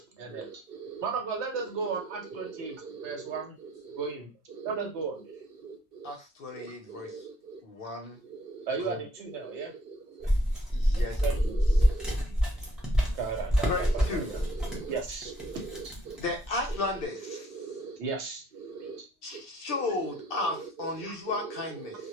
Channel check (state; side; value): normal; both; correlation 0.62